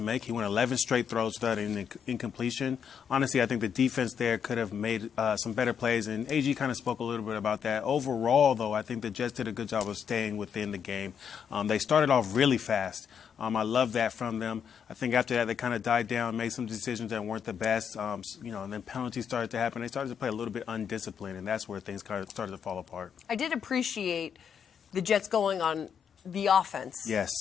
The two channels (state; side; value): quieter; right; 7.6 dB